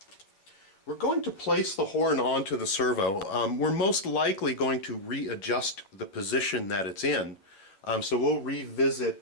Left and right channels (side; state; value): right; late; 11 ms